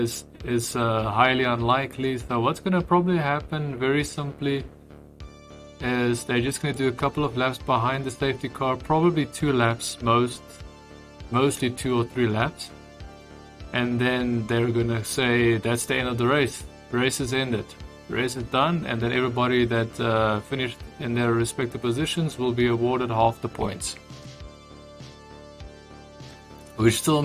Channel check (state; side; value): identical; both; correlation 1.00